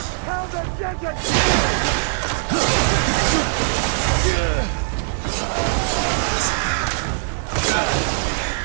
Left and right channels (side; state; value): left; silent; digital silence